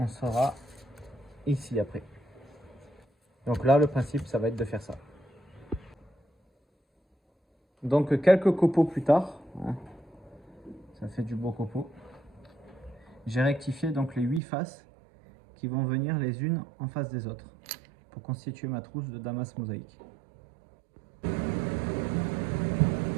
sera ici après. Donc là, le principe, ça va être de faire ça. Donc quelques copeaux plus tard, hein, ça fait du beau copeau. J'ai rectifié donc les 8 faces qui vont venir les unes en face des autres pour constituer ma trousse de damas mosaïque.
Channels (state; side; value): drops out; left; at 14.4 s